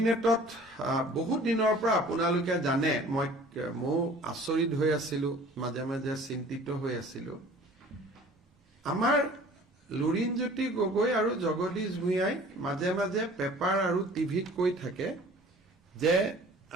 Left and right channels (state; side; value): normal; both; correlation 0.48